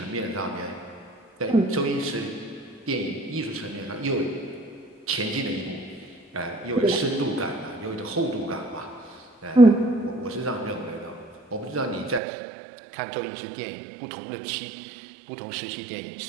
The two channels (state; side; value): drops out; left; at 12.2 s